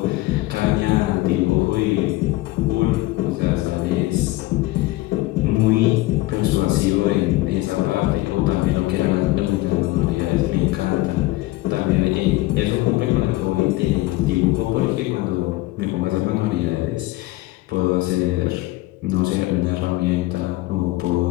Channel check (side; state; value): right; quieter; 18.8 dB